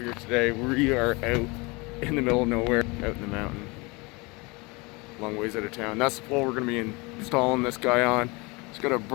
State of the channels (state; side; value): quieter; right; 26.4 dB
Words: today. We are out in the middle of nowhere, out in the mountain, long ways out of town. That's the pole we're going to be installing this guy on. It's got a